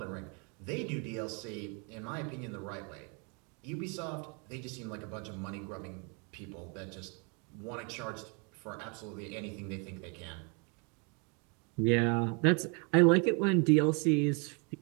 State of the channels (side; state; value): left; quieter; 34.6 dB